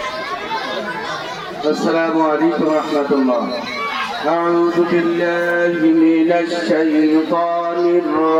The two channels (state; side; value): identical; both; correlation 1.00